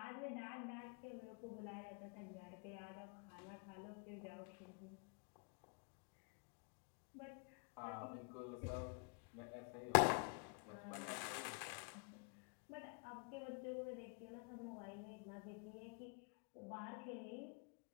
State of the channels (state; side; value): quieter; right; 34.7 dB